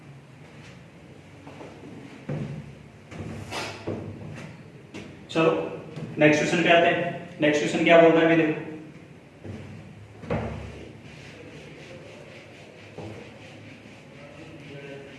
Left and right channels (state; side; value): identical; both; correlation 1.00